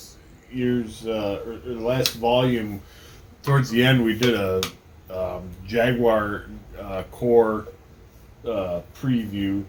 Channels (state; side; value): identical; both; correlation 1.00